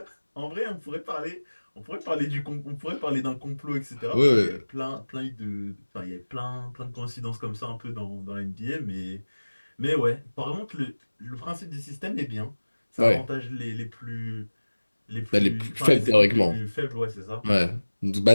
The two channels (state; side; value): inverted; both; correlation -1.00